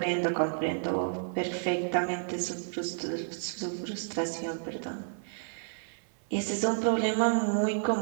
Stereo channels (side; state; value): left; silent; 57 dB below the other